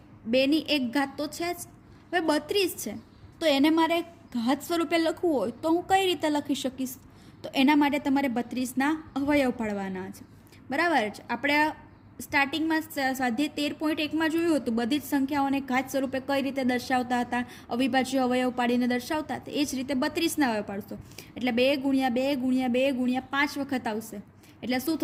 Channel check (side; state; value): both; identical; correlation 1.00